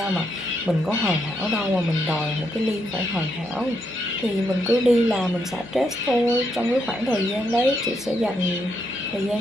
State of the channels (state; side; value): normal; both; correlation 0.78